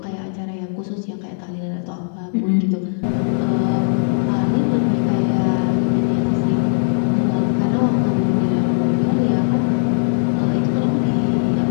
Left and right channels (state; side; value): silent; right; digital silence